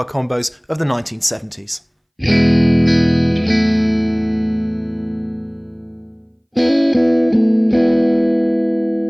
combos of the 1970s.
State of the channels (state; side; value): identical; both; correlation 1.00